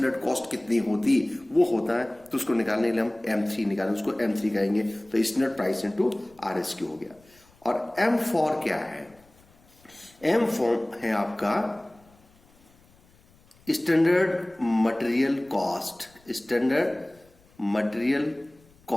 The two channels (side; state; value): left; noise; rumble, 30 dB below the sound